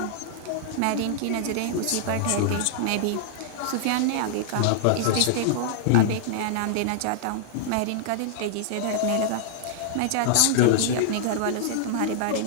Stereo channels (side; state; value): both; different; correlation -0.01